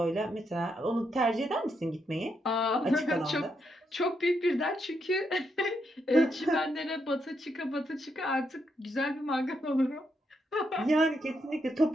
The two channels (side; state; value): both; normal; correlation 0.80